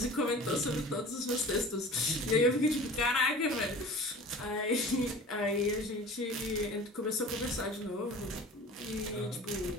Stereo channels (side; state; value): both; normal; correlation 0.41